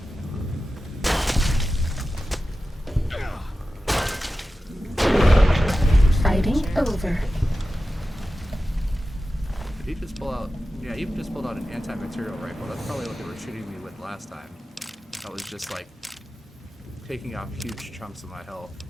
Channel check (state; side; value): normal; both; correlation 0.93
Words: Fighting over. Did he just pull out? Yeah, he just pulled out an anti-material rifle. That's probably what they were shooting me with last time. That was just like taking off huge chunks of my health.